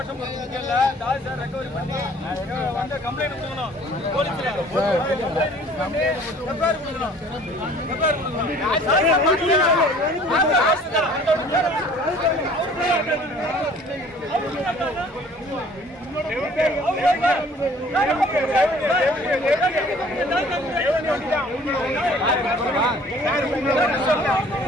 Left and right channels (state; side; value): normal; both; correlation 0.53